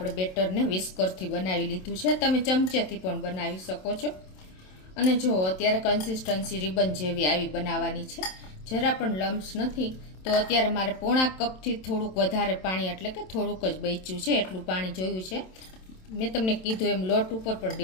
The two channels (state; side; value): late; right; 27 ms